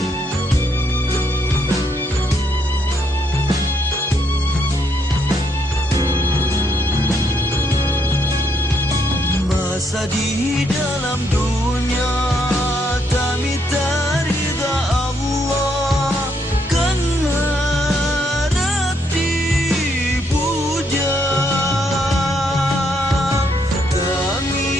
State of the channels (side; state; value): both; normal; correlation 0.74